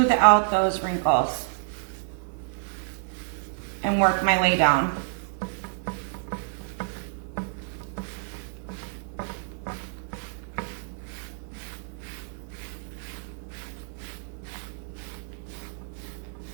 out those wrinkles and work my way down.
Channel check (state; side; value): silent; left; 59 dB below the other